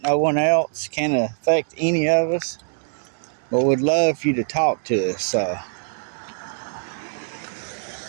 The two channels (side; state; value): left; silent; 63 dB below the other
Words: No one else can affect any of us. But we'd love for you to talk to us.